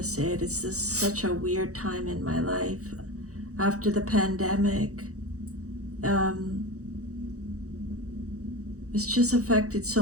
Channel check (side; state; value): left; late; 0.65 ms